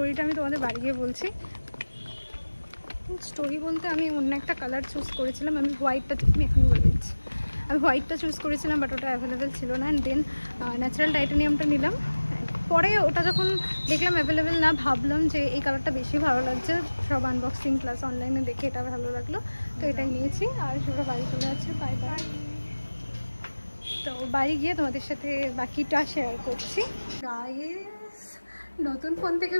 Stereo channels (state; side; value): inverted; both; correlation -1.00